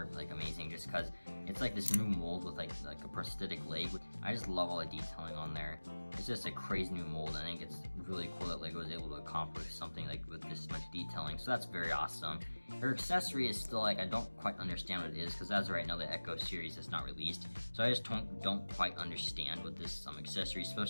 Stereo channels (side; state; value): both; inverted; correlation -1.00